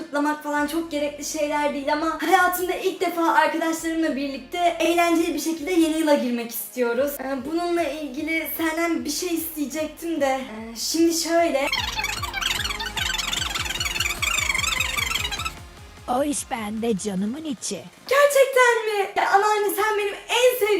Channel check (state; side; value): identical; both; correlation 1.00